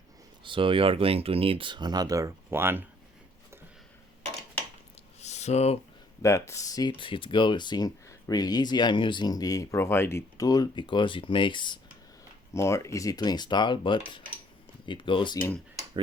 so you are going to need another one. So that's it. It goes in really easy. I'm using the provided tool because it makes more easy to install, but it goes in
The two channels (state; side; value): normal; both; correlation 0.62